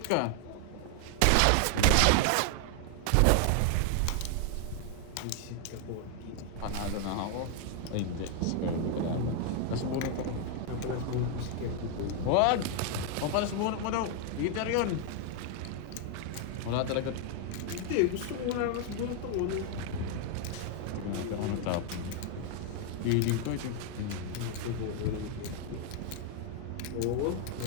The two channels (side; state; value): both; different; correlation 0.00